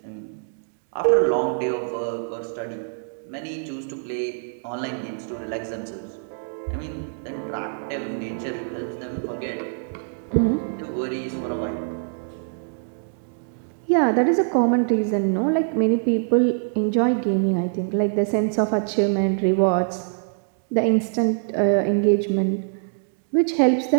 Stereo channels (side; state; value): left; silent; digital silence